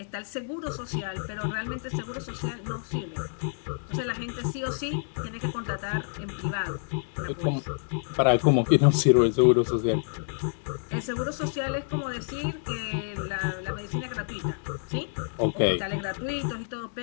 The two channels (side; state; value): right; silent; digital silence